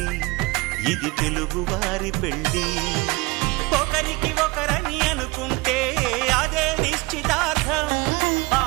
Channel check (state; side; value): quieter; left; 24.0 dB